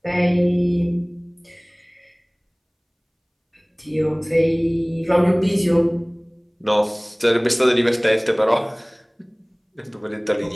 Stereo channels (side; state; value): both; identical; correlation 1.00